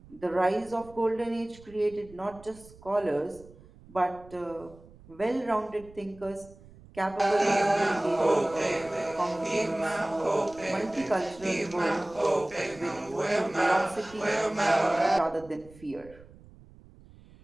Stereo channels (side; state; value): right; noise; rumble, 22 dB below the sound